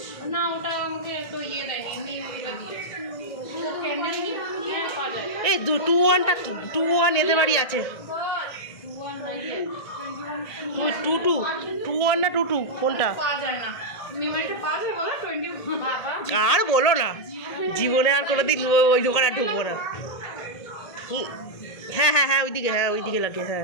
না ওটা আমাকে তো ইয়ে দেয়নি, এই 2-1টা 2-1 এদের বাড়ি আছে। 2-1 না 2-2 কোনটা? আর বলো না, জীবনে আর কোনোদিন ওই দোকানে আর ঢুকবো না। হ্যাঁ হ্যাঁ হ্যাঁ ওইদিকে, হ্যাঁ ওইদিকে লাগে, হ্যাঁ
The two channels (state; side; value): late; right; 1.9 ms